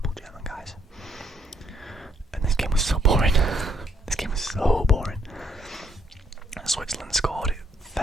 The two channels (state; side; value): normal; both; correlation 0.71